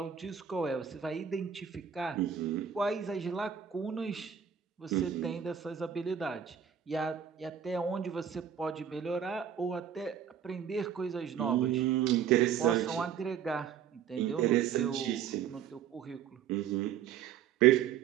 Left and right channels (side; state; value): left; quieter; 8.5 dB